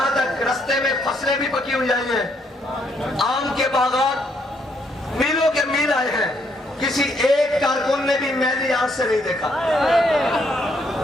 تک رستے میں فصلیں بھی پکی ہوئی آئی ہیں, آم کے باغات میلوں کے میل آئے ہیں, کسی ایک کارکن نے بھی میلی آنکھ سے نہیں دیکھا,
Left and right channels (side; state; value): both; normal; correlation 0.72